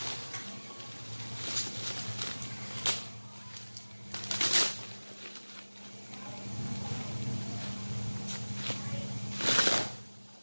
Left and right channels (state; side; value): inverted; both; correlation -1.00